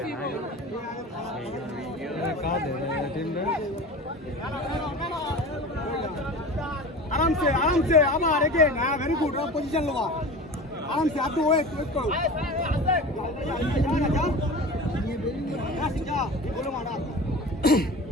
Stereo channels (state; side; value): normal; both; correlation 0.34